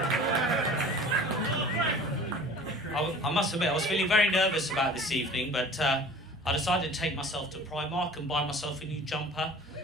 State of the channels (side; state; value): both; normal; correlation 0.44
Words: I must admit, I was feeling very nervous about this evening, but I decided to take myself to Primark and buy myself a new jumper.